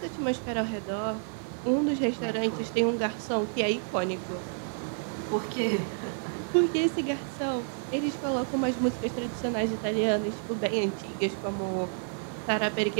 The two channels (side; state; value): left; silent; 58 dB below the other